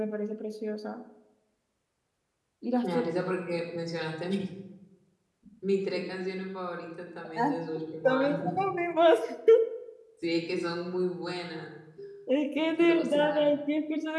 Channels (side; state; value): both; identical; correlation 1.00